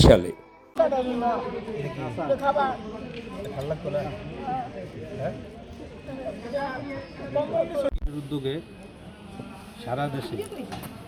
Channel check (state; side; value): identical; both; correlation 1.00